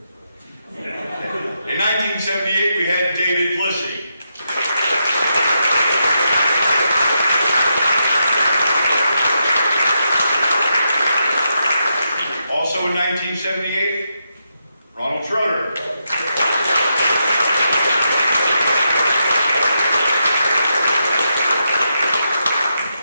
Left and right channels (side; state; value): both; inverted; correlation -0.83